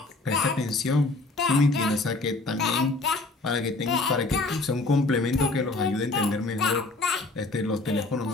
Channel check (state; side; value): quieter; right; 3.3 dB